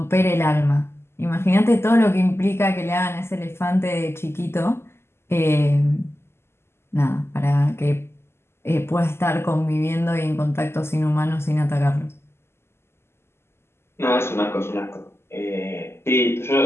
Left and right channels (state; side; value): late; right; 0.12 ms